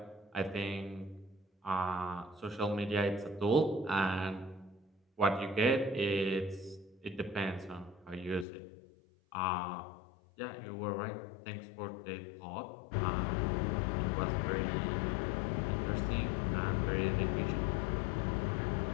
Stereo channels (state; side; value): drops out; right; at 8.5 s